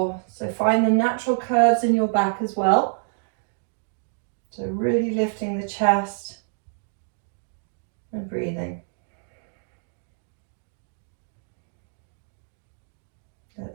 So find the natural curves in your back as well. So really lifting the chest and breathing. Let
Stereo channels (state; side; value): silent; left; digital silence